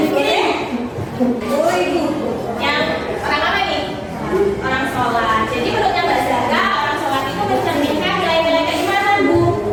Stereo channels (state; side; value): identical; both; correlation 1.00